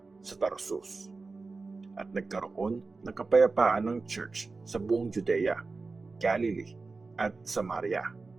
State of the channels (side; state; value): left; quieter; 3.9 dB